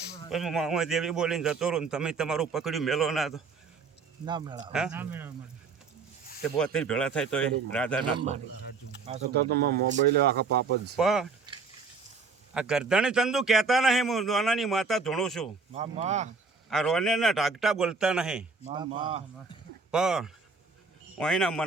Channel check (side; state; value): left; quieter; 4.6 dB